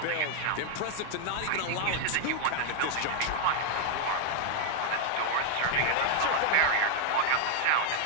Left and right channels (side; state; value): both; different; correlation 0.00